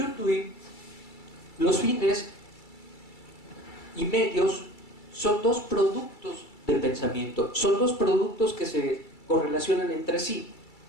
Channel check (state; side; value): late; right; 2.3 ms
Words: Dewey, los fines y medios son dos productos del pensamiento, son dos productos que se correlacionan entre sí.